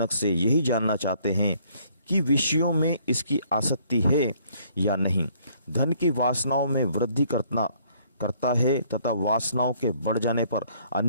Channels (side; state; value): both; inverted; correlation -0.63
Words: से यही जानना चाहते हैं कि विषयों में इसकी आसक्ति है या नहीं। धन की वासनाओं में वृद्धि करता है तथा वासनाओं के बढ़ जाने पर